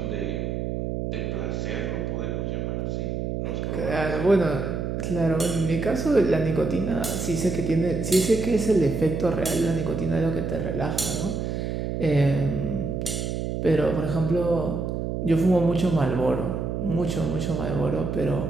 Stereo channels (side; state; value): right; noise; hum, 2 dB below the sound